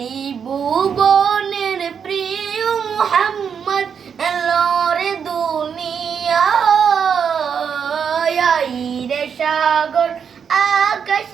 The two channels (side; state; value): left; quieter; 7.1 dB